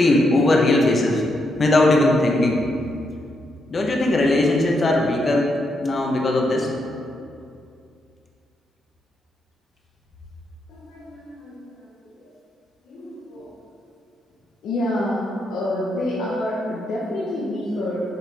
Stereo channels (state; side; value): normal; both; correlation 0.80